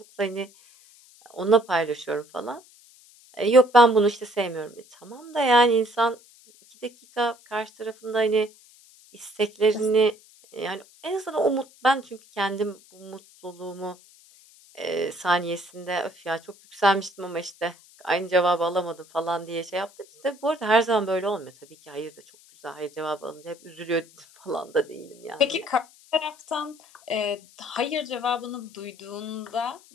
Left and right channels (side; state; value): left; noise; hiss, 26 dB below the sound